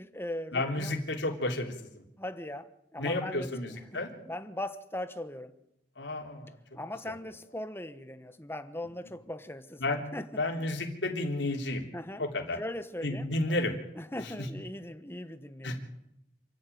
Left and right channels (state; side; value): normal; both; correlation 0.35